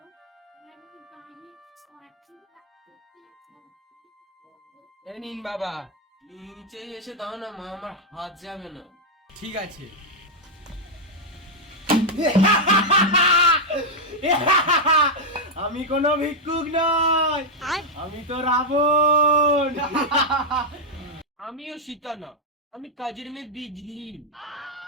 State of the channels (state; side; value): normal; both; correlation -0.02